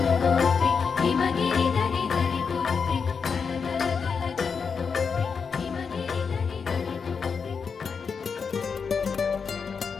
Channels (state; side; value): quieter; right; 5.8 dB